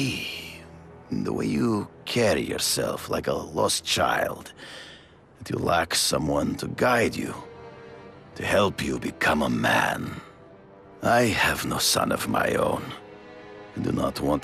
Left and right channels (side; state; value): both; identical; correlation 1.00